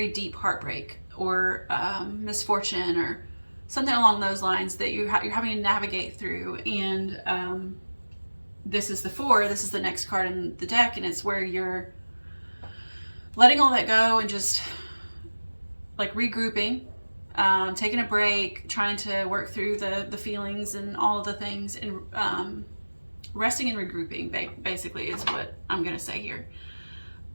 deep heartbreak or misfortune or something along those lines that you're having to navigate through. And this is the four, this is the next card in the deck, and it's where you're letting all that go and just like regrouping, taking a break, trying to work through the feelings and all of the things, and resting and regrouping basically is what I'm gonna say here.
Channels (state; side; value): inverted; both; correlation -1.00